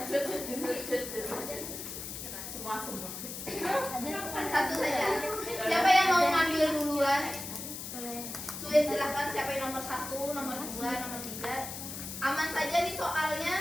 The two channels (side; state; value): left; noise; hiss, 8 dB below the sound